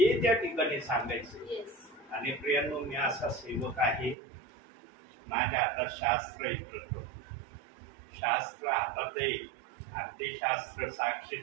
त्या ठिकाणी सांगायचं. आणि प्रियांनो, मी असा सेवक आहे, माझ्या हातात शास्त्र आहे, शास्त्र हातात आहे आणि ते शास्त्र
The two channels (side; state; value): left; drops out; at 4.2 s